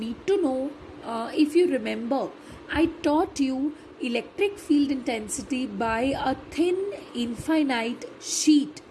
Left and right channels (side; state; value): both; identical; correlation 1.00